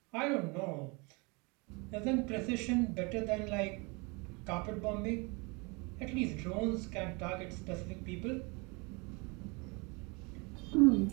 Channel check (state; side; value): quieter; left; 29.1 dB